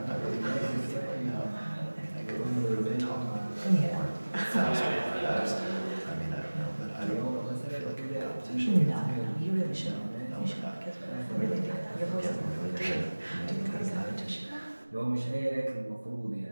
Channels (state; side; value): inverted; both; correlation -1.00